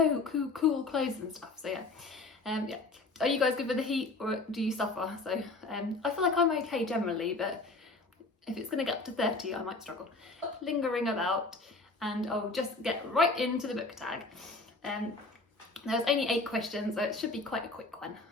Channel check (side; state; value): right; quieter; 3.4 dB